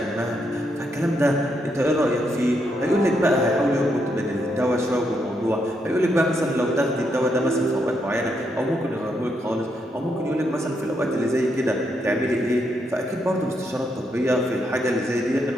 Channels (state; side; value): normal; both; correlation 0.79